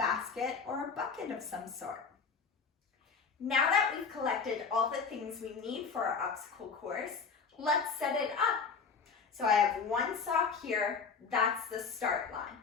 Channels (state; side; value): quieter; right; 5.4 dB